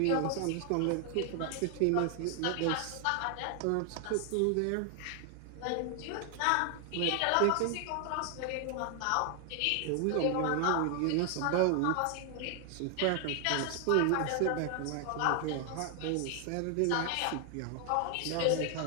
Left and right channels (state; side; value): different; both; correlation 0.00